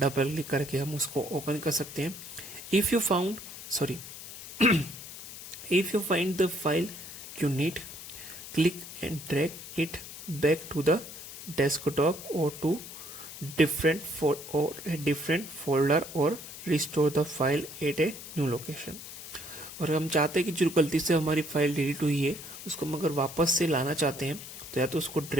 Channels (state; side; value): noise; left; hiss, 12 dB below the sound